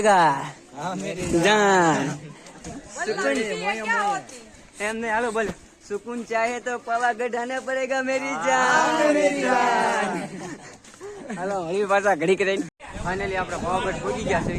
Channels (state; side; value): identical; both; correlation 1.00